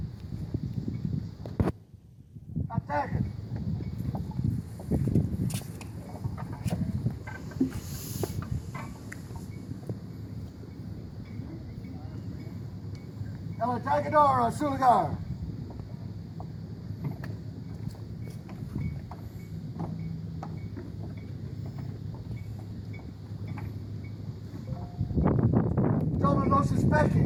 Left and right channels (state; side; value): identical; both; correlation 1.00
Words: Attack it. El atacador a su lugar. Los